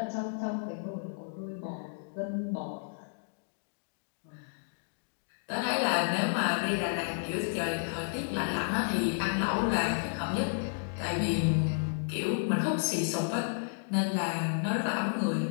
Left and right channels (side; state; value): right; silent; digital silence